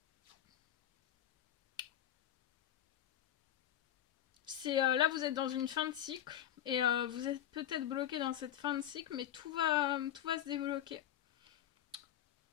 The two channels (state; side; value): quieter; right; 11.4 dB